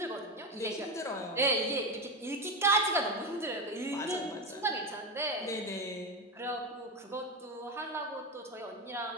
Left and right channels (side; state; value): both; normal; correlation 0.17